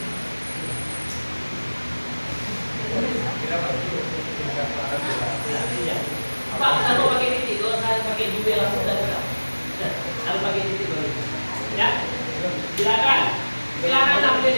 Pak, kalau pakai titik, kalau saya pakai juga langsung dan harus pakai titik dulu. Ya, silakan sampai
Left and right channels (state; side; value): inverted; both; correlation -1.00